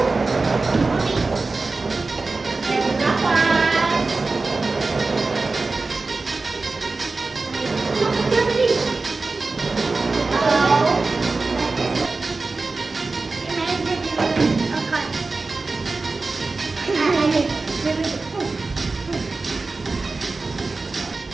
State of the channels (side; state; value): left; quieter; 3.7 dB